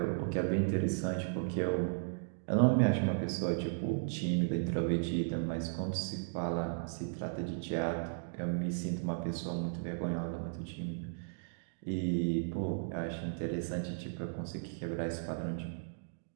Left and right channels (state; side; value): silent; left; digital silence